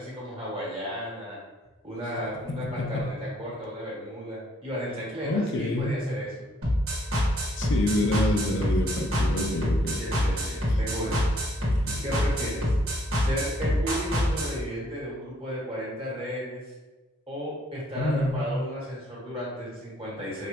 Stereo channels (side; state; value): both; normal; correlation 0.67